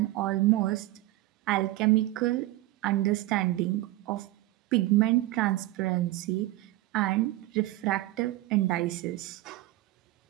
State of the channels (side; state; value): left; quieter; 17.3 dB